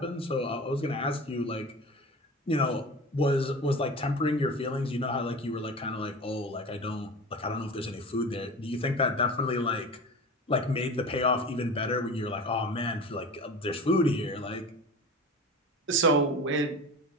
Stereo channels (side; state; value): both; normal; correlation 0.33